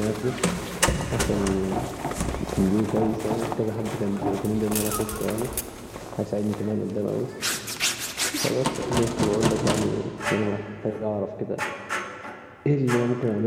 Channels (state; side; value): identical; both; correlation 1.00